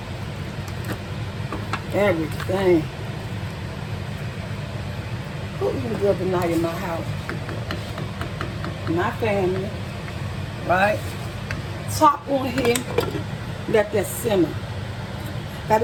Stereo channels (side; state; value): both; identical; correlation 1.00